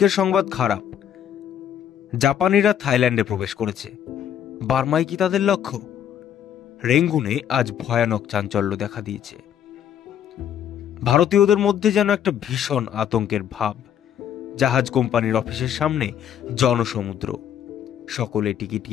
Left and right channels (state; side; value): quieter; right; 9.6 dB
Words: সংবাদ খারাপ। জাপানিরা থাইল্যান্ডে প্রবেশ করেছে। বার্মায় কি তাদের লক্ষ্য? রেঙ্গুনে আজ ভয়ানক চাঞ্চল্য দেখা দিয়েছে। ভারতীয়দের মধ্যে যেন একটা ভীষণ আতঙ্কের ভাব। জাহাজ কোম্পানির অফিসের সামনে জনসমুদ্র। সকলে টিকিট